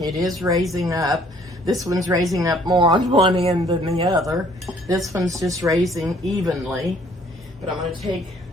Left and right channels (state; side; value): normal; both; correlation 0.60